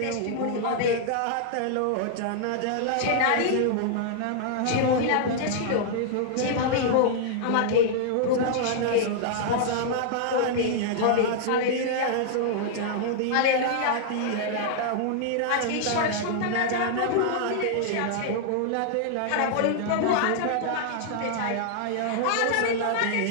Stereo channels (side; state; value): both; different; correlation -0.01